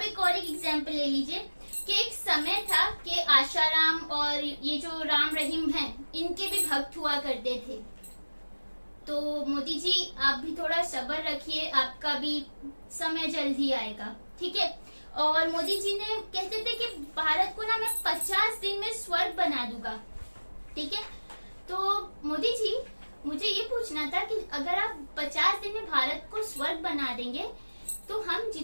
एक और एग्जाम्पल ले लीजिए कि एक समय था कि आशाराम और ये जो राम रहीम हैं, इनके भी भक्त हुआ करते थे। तो मोदी जी आप भी थोड़ा सब्र रखिए, आपका भी समय जल्द ही आएगा। ठीक है, और मोदी जी ने कहते थे कि भारत को ना मैं 50 दिन में स्वर्ग बना दूंगा। ठीक है, तो मोदी जी मुझे ये पूछना था कि अगर आप 50 दिन में भारत को स्वर्ग बना देंगे तो हम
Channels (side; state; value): both; inverted; correlation -1.00